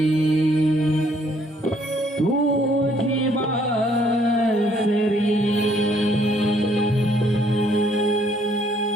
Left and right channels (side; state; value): both; normal; correlation 0.65